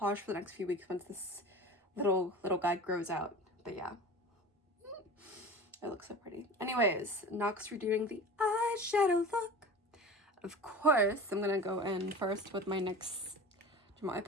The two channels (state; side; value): normal; both; correlation 0.36